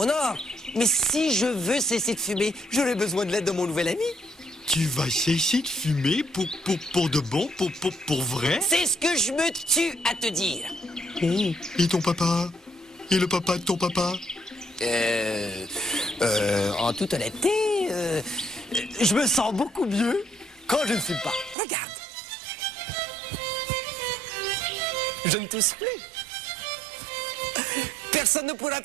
or. Mais si je veux cesser de fumer, j'aurai besoin de l'aide de mon nouvel ami. Tu vas cesser de fumer pour de bon, pour vrai? C'est ce que je me tue à te dire. Oh, et ton papa? Et le papa de ton papa? En toute honnêteté, je me sens beaucoup mieux quand je ne fume pas. Regarde. Je ne tousse plus. Personne ne pourra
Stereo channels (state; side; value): drops out; left; at 21.6 s